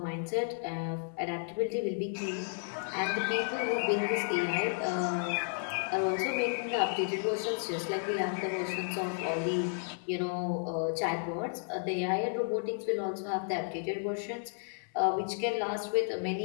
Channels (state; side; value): silent; right; 56 dB below the other